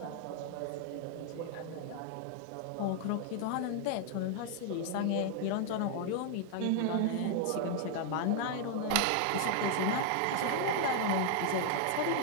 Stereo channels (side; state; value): both; different; correlation 0.00